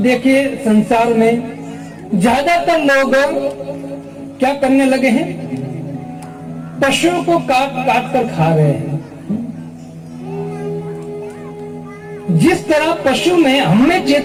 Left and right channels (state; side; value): identical; both; correlation 1.00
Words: संसार में ज्यादातर लोग क्या करने लगे हैं? पशुओं को काट कर खा रहे हैं। जिस तरह पशु में हमें